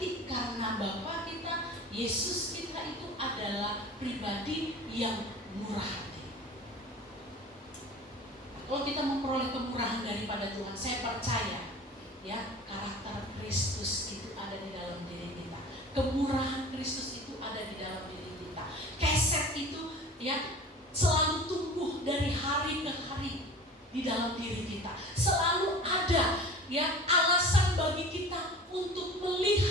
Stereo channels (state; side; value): normal; both; correlation 0.39